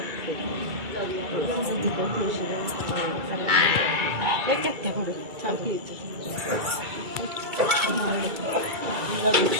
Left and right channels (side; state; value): left; late; 2.3 ms